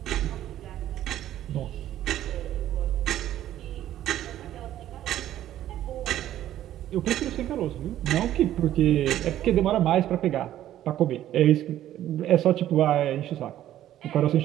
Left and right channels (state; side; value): quieter; left; 12.5 dB